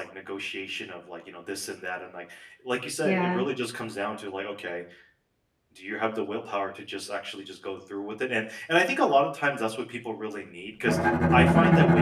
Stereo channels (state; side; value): identical; both; correlation 1.00